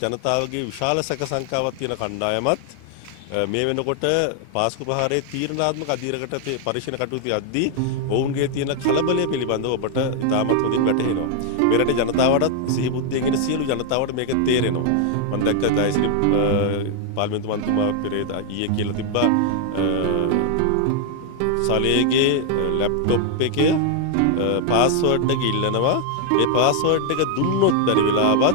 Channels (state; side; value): different; both; correlation 0.00